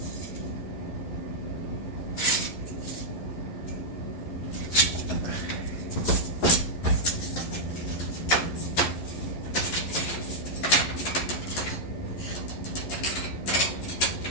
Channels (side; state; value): right; late; 11 ms